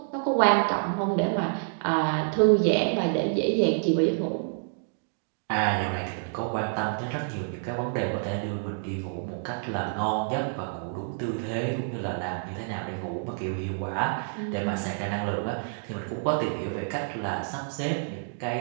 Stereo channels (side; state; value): left; silent; digital silence